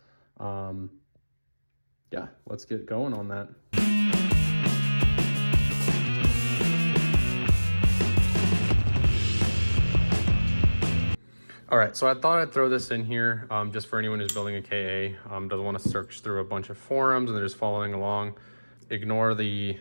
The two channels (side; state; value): both; inverted; correlation -1.00